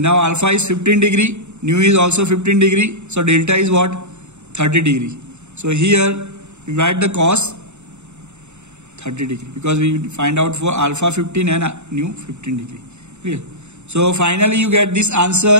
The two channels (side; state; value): left; late; 0.82 ms